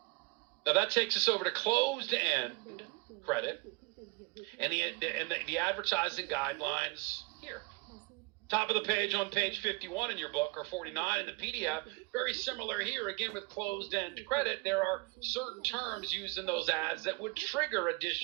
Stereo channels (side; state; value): left; quieter; 26.7 dB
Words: Now that takes us over to closed-end credit and the advertising guidelines here. Top of the page on page 51 in your book, or 49 in the PDF. Very similar here, again with closed-end credit. There are certain terms used in those ads that would trigger